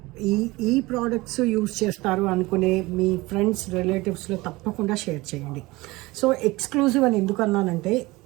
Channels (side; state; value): left; quieter; 21.2 dB